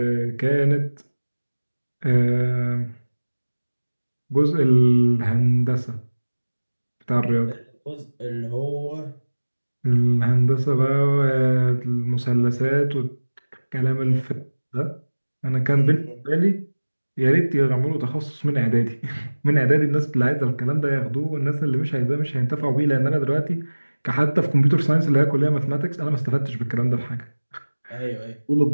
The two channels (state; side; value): inverted; both; correlation -1.00